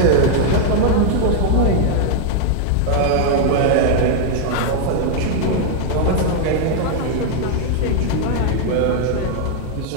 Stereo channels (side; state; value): both; different; correlation 0.00